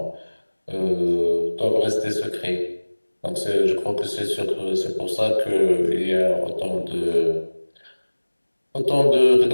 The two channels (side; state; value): both; inverted; correlation -1.00